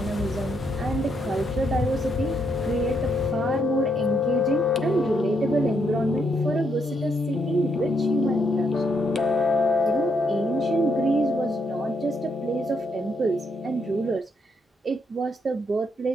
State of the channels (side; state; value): both; normal; correlation 0.76